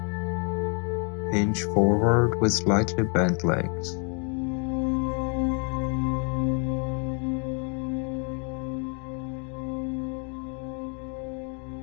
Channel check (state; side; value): quieter; right; 38.6 dB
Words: Hinge forward with slightly bent legs.